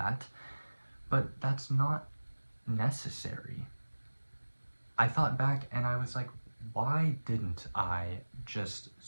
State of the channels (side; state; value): both; inverted; correlation -1.00